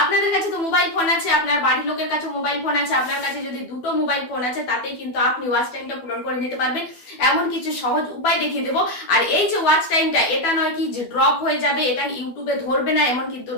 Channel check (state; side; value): late; right; 12 ms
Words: আপনাদের কাছে তো মোবাইল ফোন আছে, আপনার বাড়ির লোকের কাছে মোবাইল ফোন আছে, আপনার কাছে যদি দুটো মোবাইল ফোন আছে তাতেই কিন্তু আপনি ওয়াচ টাইমটা পূরণ করে নিতে পারবেন। এমন কিছু সহজ উপায় দেখিয়ে দেবো। আর এই যে ওয়াচ টাইমটা, এটা নয় কি যে ড্রপ হয়ে যাবে, এটা ইউটিউবে ধরবে না, এমন কিন্তু